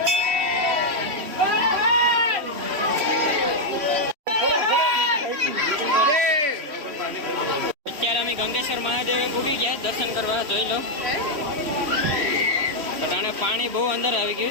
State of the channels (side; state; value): left; late; 3.3 ms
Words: અત્યારે અમે ગંગેશ્વર મહાદેવે પૂગી ગયા દર્શન કરવા, જોઈ લો. અટાણે પાણી બહુ અંદર આવી